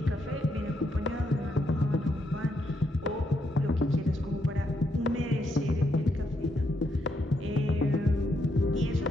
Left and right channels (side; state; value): both; normal; correlation 0.78